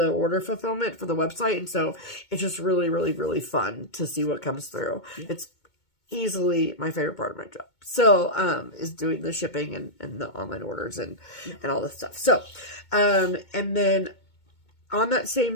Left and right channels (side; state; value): right; late; 2.2 ms